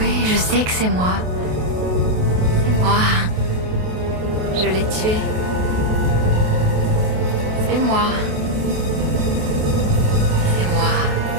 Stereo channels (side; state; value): left; late; 28 ms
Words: je sais que c'est moi. C'est moi. Je l'ai tué. C'est moi. C'est moi.